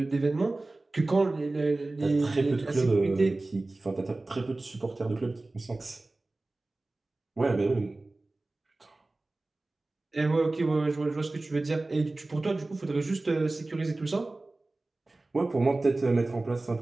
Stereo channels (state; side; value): quieter; left; 3.0 dB